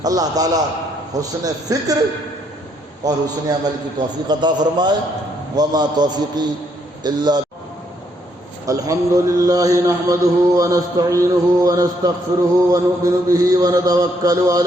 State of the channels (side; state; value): both; normal; correlation 0.72